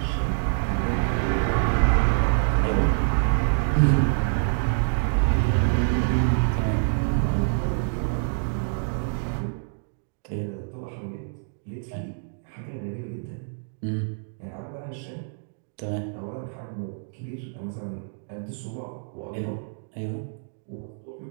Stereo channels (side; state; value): left; silent; digital silence